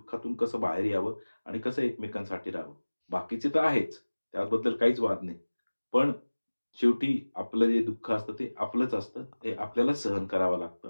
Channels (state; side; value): inverted; both; correlation -1.00